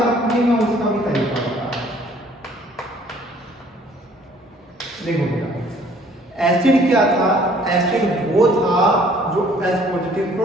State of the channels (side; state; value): both; normal; correlation 0.58